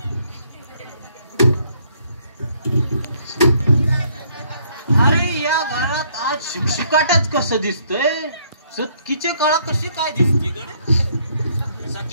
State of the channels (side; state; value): both; inverted; correlation -0.67